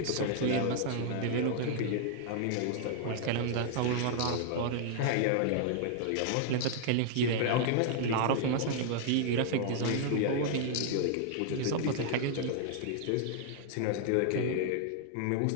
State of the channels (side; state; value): both; different; correlation -0.01